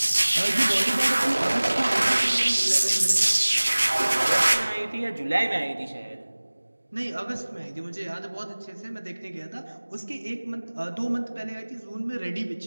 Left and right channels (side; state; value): both; inverted; correlation -1.00